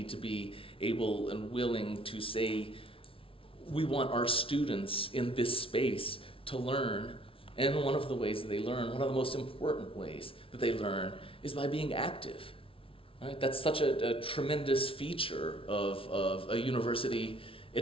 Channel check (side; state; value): right; late; 0.26 ms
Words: to be able and willing to say, we want our students in this space to learn, and one of the ways that they learn, one of the most important ways that they learn, is by being active. Right? That's such a tremendous feature of a university